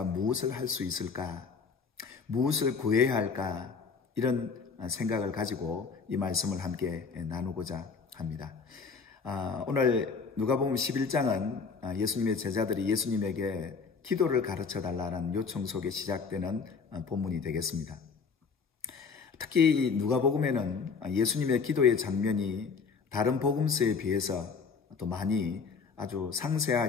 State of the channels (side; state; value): right; quieter; 5.2 dB